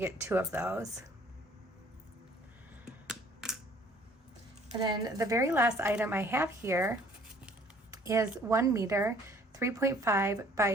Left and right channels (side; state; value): both; normal; correlation 0.57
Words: 2 of those. And then the very last item I have here is 1 meter 3.5